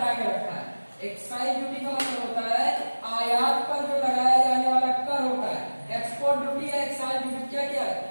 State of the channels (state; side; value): inverted; both; correlation -1.00